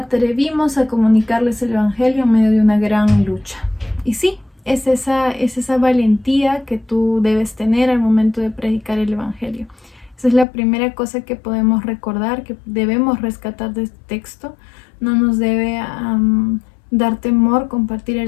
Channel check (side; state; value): right; drops out; at 10.5 s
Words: a comunicarles el evangelio en medio de una gran lucha. Y sí, es esa valentía que tú debes tener al momento de predicar el evangelio. Esa es la primera cosa que podemos recordar, que debemos rescatar de este texto. No nos debe dar temor compartir